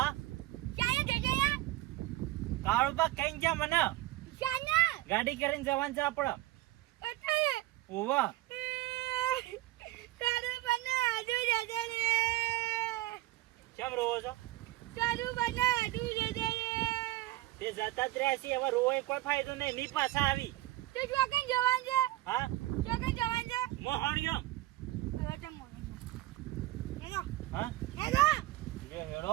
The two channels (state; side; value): quieter; left; 17.0 dB